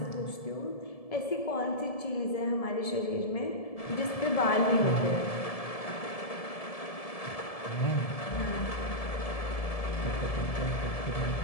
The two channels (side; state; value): right; late; 1.7 ms